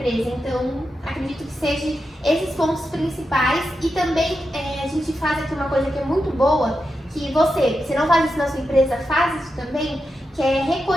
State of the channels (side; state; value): both; normal; correlation 0.88